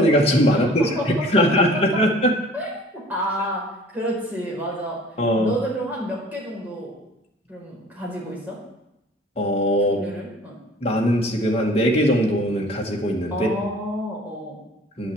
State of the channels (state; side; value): normal; both; correlation 0.49